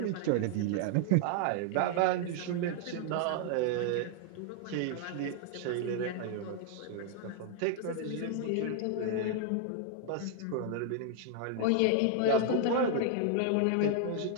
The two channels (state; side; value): different; both; correlation 0.00